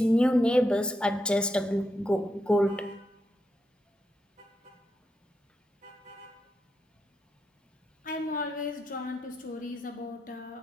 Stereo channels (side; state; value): both; normal; correlation 0.84